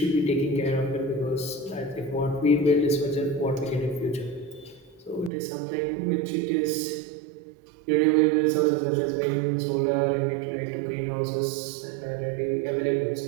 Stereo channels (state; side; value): drops out; left; at 5.3 s